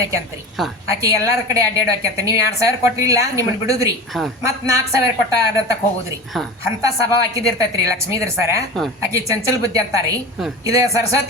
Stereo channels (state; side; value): normal; both; correlation 0.31